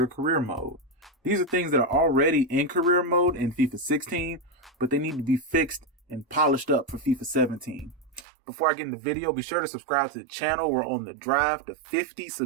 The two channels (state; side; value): drops out; left; at 8.2 s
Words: Career Mode. These are things that are already in career mode in FIFA 16, but they need to be fixed and polished up for FIFA 17. Before I get in the video, be sure to subscribe to the channel. We're on the drive to 50